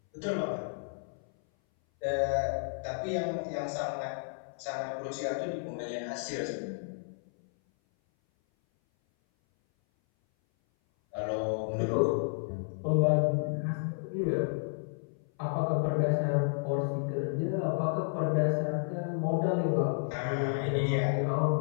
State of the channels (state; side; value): silent; right; 57 dB below the other